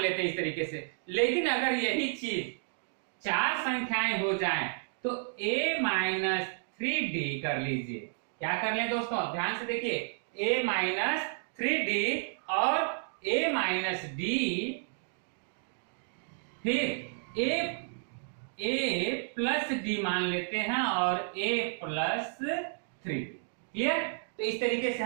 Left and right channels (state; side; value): silent; left; digital silence